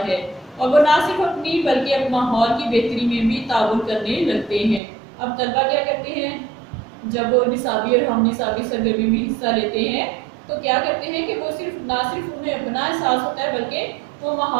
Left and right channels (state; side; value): drops out; left; at 4.8 s